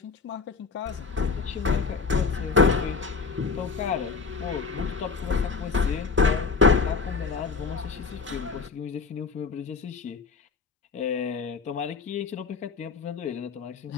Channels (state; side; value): quieter; right; 5.0 dB